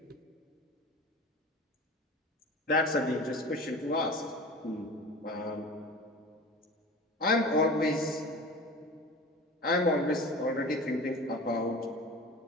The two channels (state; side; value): normal; both; correlation 0.37